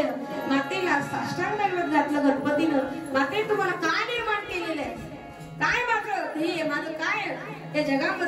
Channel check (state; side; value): identical; both; correlation 1.00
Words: मातेला साष्टांग दैवत घातलं गणपतीनं। माते, तुम्हाला काय निर्माण केलेलं आहे, काय माझं हे माझं काय त्या